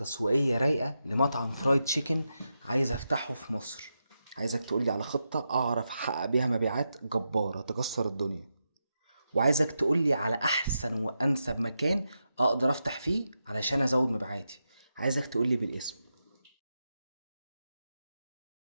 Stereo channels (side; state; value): both; inverted; correlation -0.87